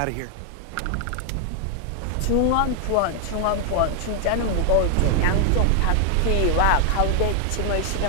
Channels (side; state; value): both; different; correlation 0.00